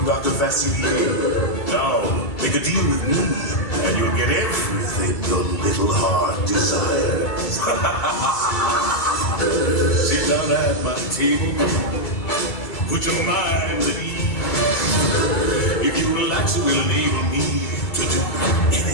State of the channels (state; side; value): late; right; 2.3 ms